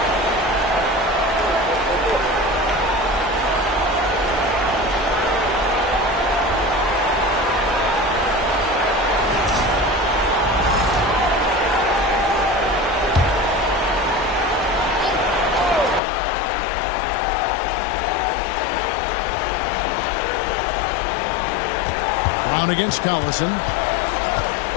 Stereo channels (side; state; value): right; drops out; at 16.0 s